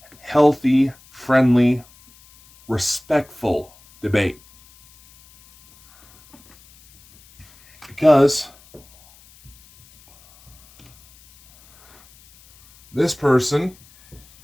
healthy, friendly, respectful debate. Because this person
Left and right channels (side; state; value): left; noise; hiss, 27 dB below the sound